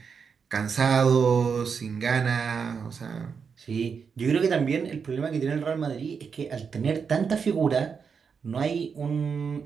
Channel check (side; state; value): left; quieter; 6.1 dB